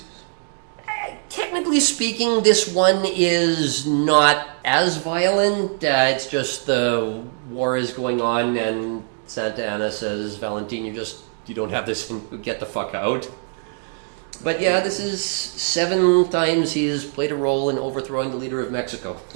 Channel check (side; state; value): left; silent; 60 dB below the other